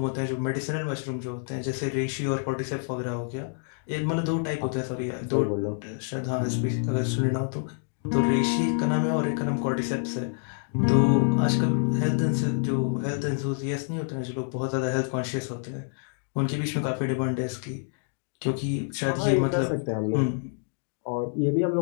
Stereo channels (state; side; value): silent; right; 56 dB below the other